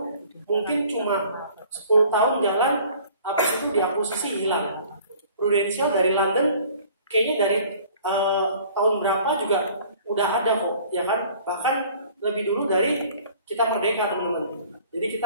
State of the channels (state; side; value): inverted; both; correlation -0.51